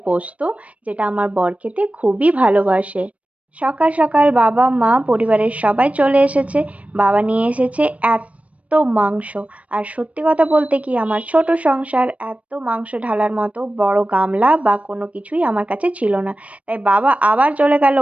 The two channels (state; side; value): late; left; 0.066 ms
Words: পোস্ত, যেটা আমার বর খেতে খুবই ভালোবাসে। সকাল সকাল বাবা মা পরিবারের সবাই চলে এসেছে। বাবা নিয়ে এসেছে এত মাংস। আর সত্যি কথা বলতে কি, আমার ছোট সংসার, এত মাংস ঢালার মতো বড় গামলা বা কোনো কিছুই আমার কাছে ছিল না। তাই বাবা আবার চলে গেল